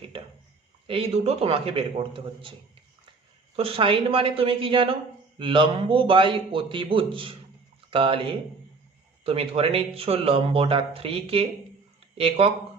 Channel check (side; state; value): left; quieter; 4.2 dB